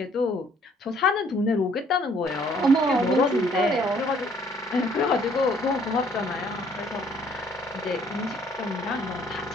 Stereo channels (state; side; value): normal; both; correlation 0.62